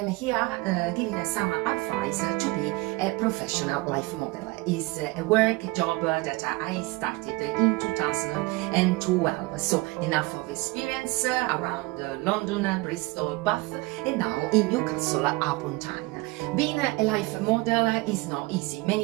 here giving some advice to be a professional life model. It's a work job that I started in 2012. So enough of experience around London, Bristol, Bath, and now in Newcastle upon Tyne. Being a life model is not easy.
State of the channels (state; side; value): quieter; left; 22.8 dB